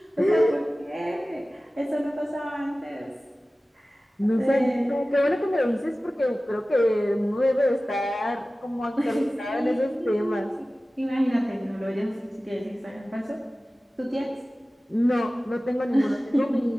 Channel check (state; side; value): normal; both; correlation 0.97